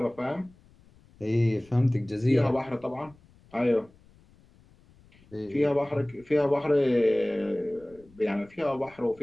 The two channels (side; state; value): left; noise; rumble, 28 dB below the sound